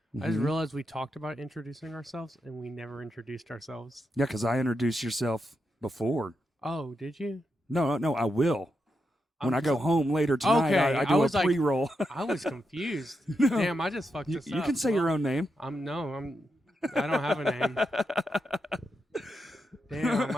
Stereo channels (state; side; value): normal; both; correlation 0.85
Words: I just Mhm. realized we talked about introducing ourselves, and we never introduced ourselves. Yeah, because I introduced yourself before. Oh, did you? No, I will. When I'm I go so- home later tonight, Okay, I I do a was like- pre-roll. I was confused. No. Damn, I just fucked you this up. can say your own name. I don't have a name. Damn,